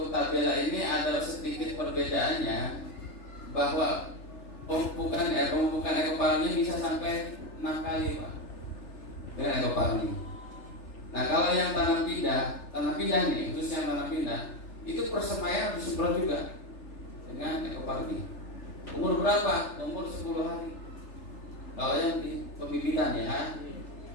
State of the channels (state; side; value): late; right; 3.4 ms